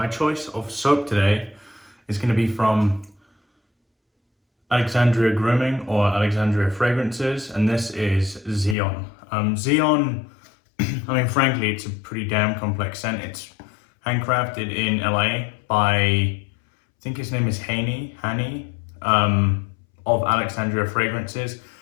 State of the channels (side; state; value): right; drops out; at 8.8 s